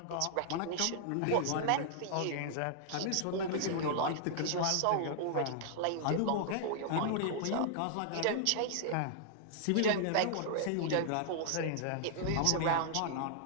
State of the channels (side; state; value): both; different; correlation -0.01